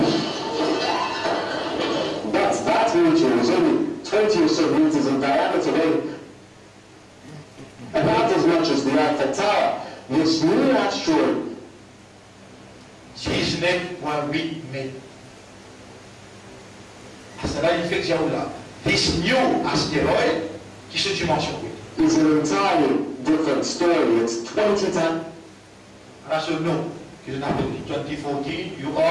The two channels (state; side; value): identical; both; correlation 1.00